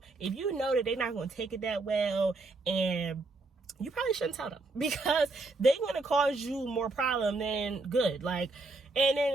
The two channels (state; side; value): quieter; left; 3.3 dB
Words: if you know that they're not gonna take it that well, and you probably shouldn't tell them, because they're gonna cause you more problem than good. Like, and then